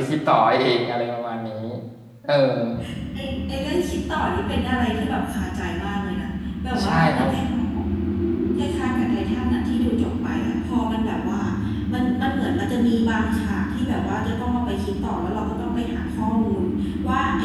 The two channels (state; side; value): identical; both; correlation 1.00